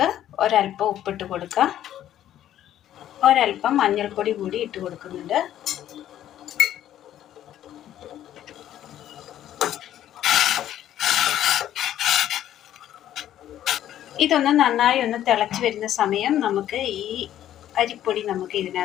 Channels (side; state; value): right; quieter; 11.8 dB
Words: ഒരല്പം ഉപ്പിട്ട് കൊടുക്കാം. ഒരല്പം മഞ്ഞൾപ്പൊടി കൂടി ഇട്ട് കൊടുക്കുന്നുണ്ട്. ഇതൊന്ന് നന്നായി ഒന്ന് തിളച്ച് വരുന്ന സമയം നമുക്ക് ഈ അരിപ്പൊടി നമുക്ക്